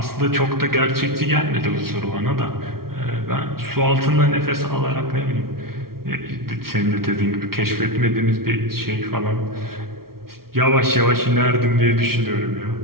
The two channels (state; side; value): late; left; 0.94 ms